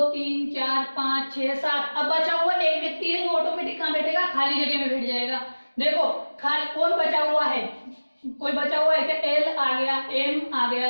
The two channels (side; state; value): both; inverted; correlation -1.00